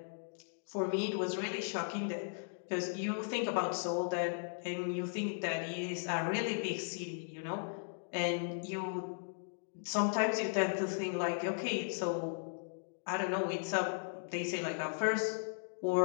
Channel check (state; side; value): silent; right; digital silence